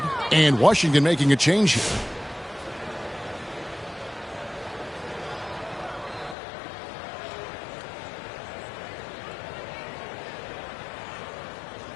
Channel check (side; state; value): right; drops out; at 6.4 s